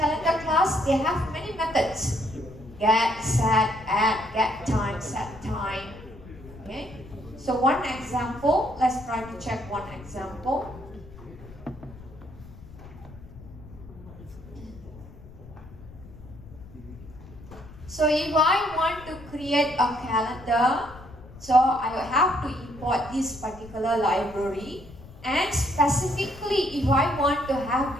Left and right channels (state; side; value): noise; left; rumble, 18 dB below the sound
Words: class, they have many methods: get, set, add, get time, set time. Okay. So one example, let's try to check one example. So if I want to create a calendar, so I have to import this particular library, and specifically if I want to have